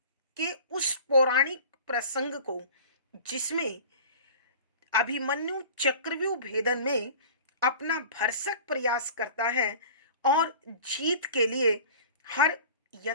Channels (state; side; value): inverted; both; correlation -0.41